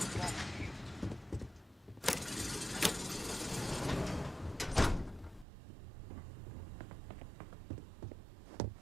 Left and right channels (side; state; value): left; drops out; at 5.5 s